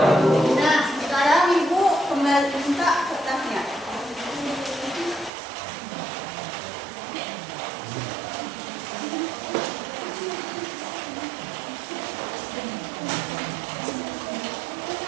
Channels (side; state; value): left; drops out; at 5.3 s